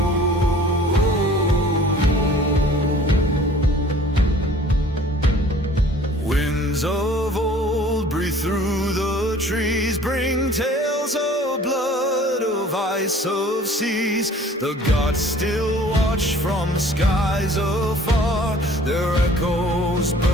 Winds of old breathe through the trees, bring tales of blood, of ice, of seas. The gods still watch from skies afar, their echoes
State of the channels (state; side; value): normal; both; correlation 0.51